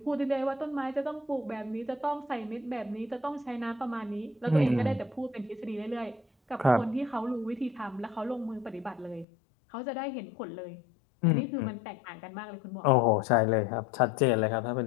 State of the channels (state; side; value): drops out; right; at 9.2 s